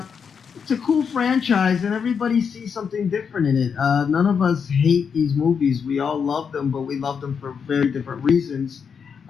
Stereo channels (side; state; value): right; quieter; 6.5 dB